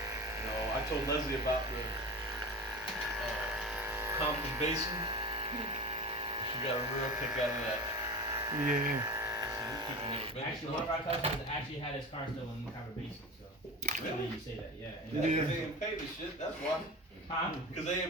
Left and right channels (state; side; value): normal; both; correlation 0.29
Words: No, I told Leslie about the Compton Basin. She got a real kick out of that. Yeah. So these people never been Actually, to one of our customers actually had his car stolen in Copper Basin, so. Really? You say that, yeah. Yeah, because they didn't pay the shit, that's why. Huh? Because they